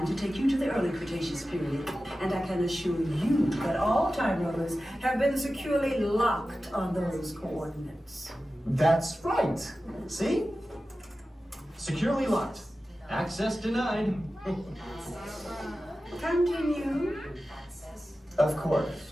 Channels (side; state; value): both; normal; correlation 0.94